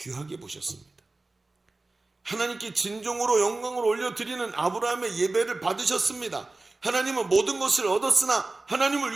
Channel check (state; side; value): quieter; left; 3.2 dB